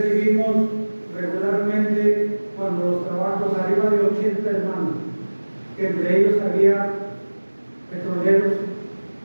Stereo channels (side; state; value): both; inverted; correlation -1.00